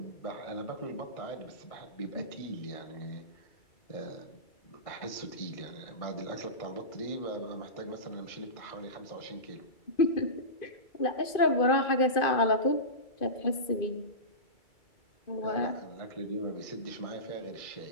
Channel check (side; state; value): right; late; 2.5 ms